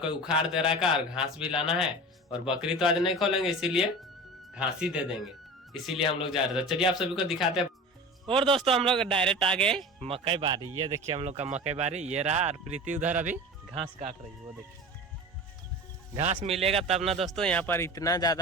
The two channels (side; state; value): both; normal; correlation 0.33